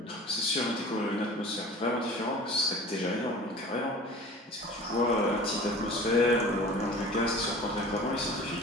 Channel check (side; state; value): both; normal; correlation 0.41